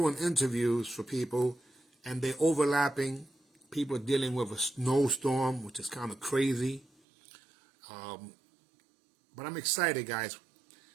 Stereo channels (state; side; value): drops out; left; at 6.9 s